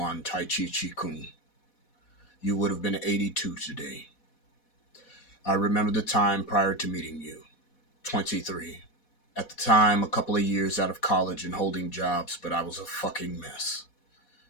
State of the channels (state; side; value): late; right; 4.1 ms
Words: Tai Chi Chi Kung. You would have been 82 today. I remember the time prior to meeting you, 23. At the time, a couple of years out of college and holding jobs, but I was a fucking mess.